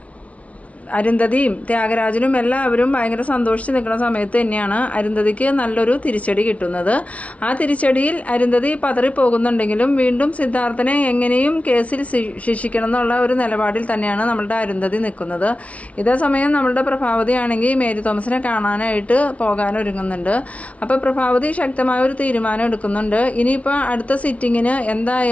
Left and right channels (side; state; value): right; late; 0.065 ms